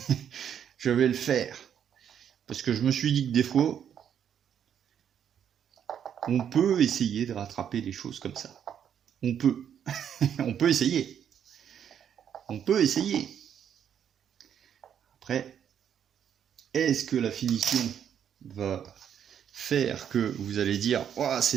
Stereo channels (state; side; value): quieter; left; 8.8 dB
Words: Je vais le faire. Parce que je me suis dit que des fois, on peut essayer de rattraper les choses comme ça. On peut. On peut essayer. On peut essayer. Après, est-ce que la finition va faire que vous allez dire oh,